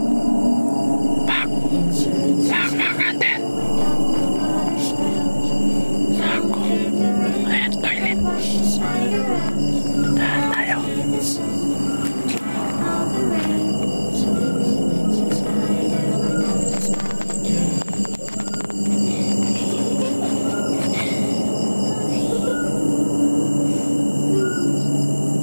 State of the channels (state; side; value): inverted; both; correlation -1.00